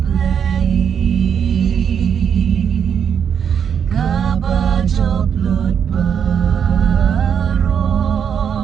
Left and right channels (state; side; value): quieter; left; 7.7 dB